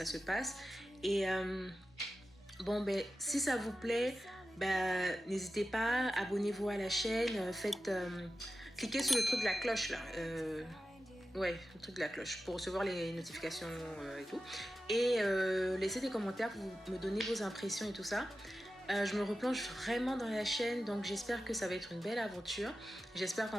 se passe. Et bon, ben, si ça vous plaît, ben, n'hésitez pas, abonnez-vous à la chaîne, cliquez sur le truc de la cloche là. Ouais, le truc de la cloche pour recevoir les notifications et tout. Et laissez des commentaires pour me donner vos impressions et tout ça. Je me replonge vraiment dans la chaîne, donc j'espère que ça va être une belle aventure. J'espère qu'on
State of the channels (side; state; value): both; normal; correlation 0.93